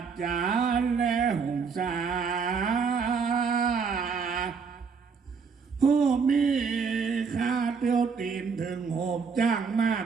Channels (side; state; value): left; quieter; 5.6 dB